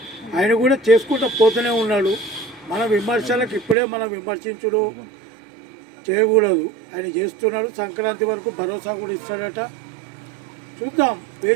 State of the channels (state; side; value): drops out; left; at 3.8 s